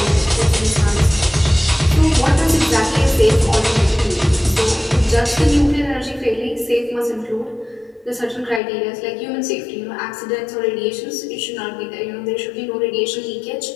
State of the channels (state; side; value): drops out; right; at 8.6 s